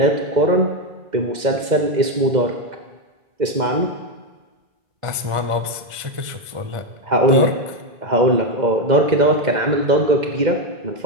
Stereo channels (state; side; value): late; left; 2.0 ms